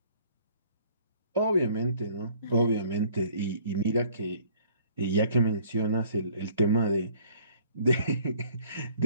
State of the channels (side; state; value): both; inverted; correlation -0.57